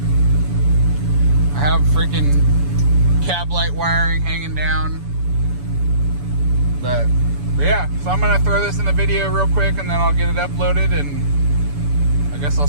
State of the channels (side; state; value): left; late; 7.0 ms